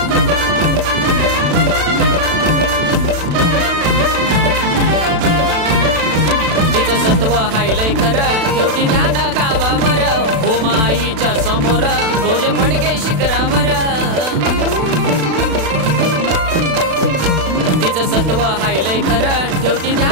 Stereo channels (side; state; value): left; late; 36 ms